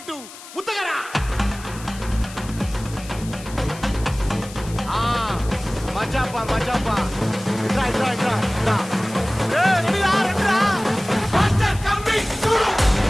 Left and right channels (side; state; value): left; noise; hiss, 16 dB below the sound